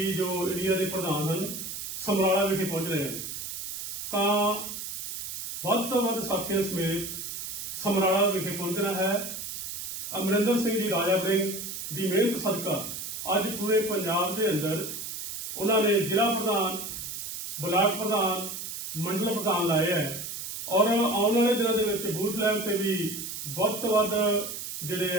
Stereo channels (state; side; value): noise; right; hiss, 6 dB below the sound